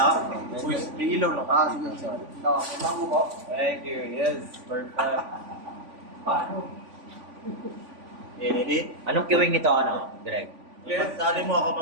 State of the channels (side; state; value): left; late; 3.5 ms